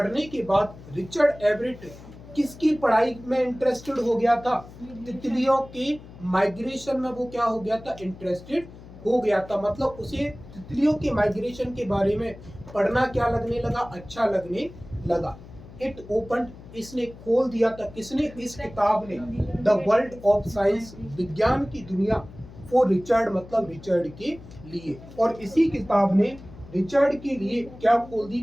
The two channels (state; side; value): noise; left; hum, 18 dB below the sound